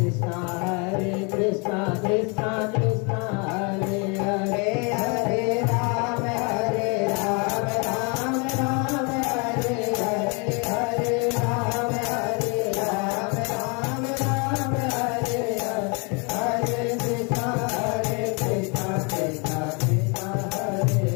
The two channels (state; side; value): quieter; right; 32.9 dB